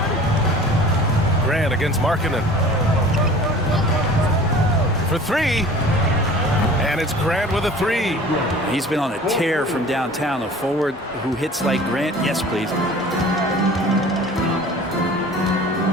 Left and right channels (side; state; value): both; normal; correlation 0.44